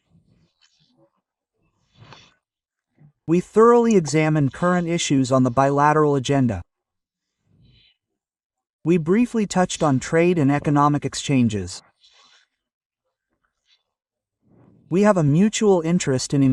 We thoroughly examined current issues on the bilateral agenda. We briefly touched on trade and economic exchanges. We have a mutual interest in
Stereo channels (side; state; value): both; identical; correlation 1.00